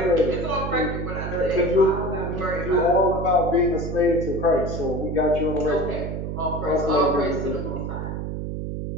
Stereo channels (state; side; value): noise; right; hum, 5 dB below the sound